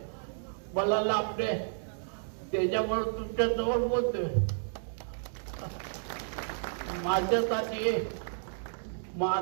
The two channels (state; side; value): silent; left; digital silence